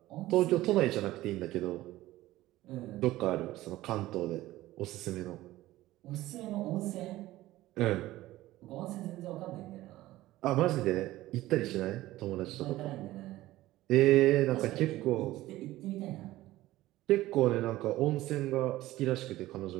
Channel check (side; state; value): left; quieter; 16.4 dB